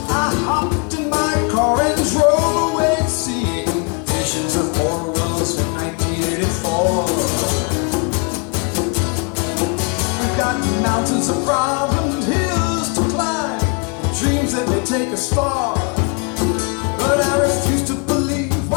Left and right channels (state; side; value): quieter; right; 34.3 dB